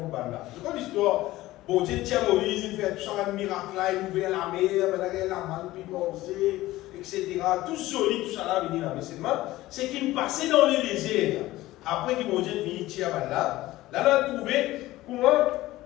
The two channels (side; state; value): right; quieter; 17.0 dB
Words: Banda. C'est quoi l'histoire? Bon Dieu tient Moïse, il fait tout ça, un miracle là, il ouvre la mer, la manne, puis manger, etc. Tout solide, tout ça là, venir là. Mais c'est qu'il passait dans le désert. Après que mon Dieu finit tirer Banda, là, on a trouvé comment